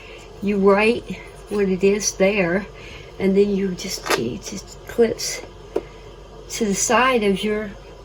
you write what it is there, and then it just clips to the side of your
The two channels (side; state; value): both; identical; correlation 1.00